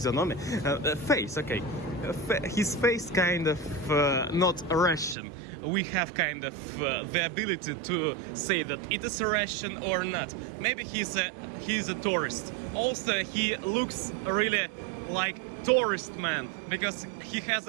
Face, okay. His face kind of not Russian. We have kind of the ability to say that it is Russian or not. Maybe he's a tourist. Also, he looks really like tourist man, because he has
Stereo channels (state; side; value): drops out; left; at 5.2 s